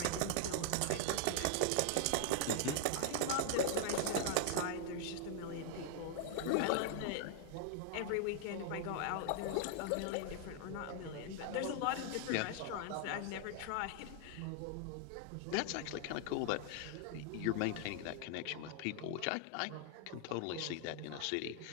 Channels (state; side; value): different; both; correlation 0.00